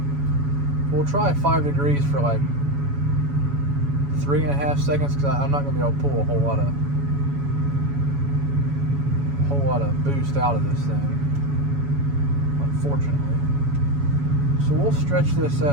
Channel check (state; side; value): late; left; 7.1 ms